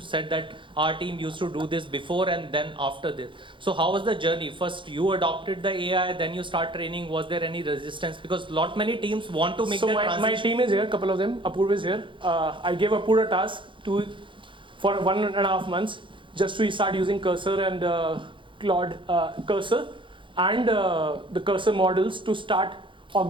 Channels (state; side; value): late; left; 0.24 ms